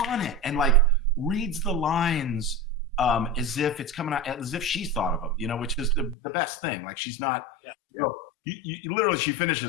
it, and like reads the lines as if it's coming out, as if she's thought of them, which is the best thing. Like she's not. Yeah. You literally, she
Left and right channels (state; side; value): drops out; right; at 6.2 s